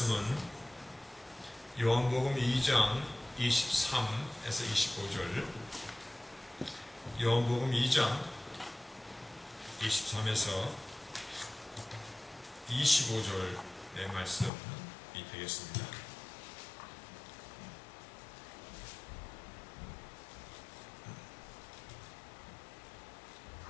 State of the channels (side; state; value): right; drops out; at 14.5 s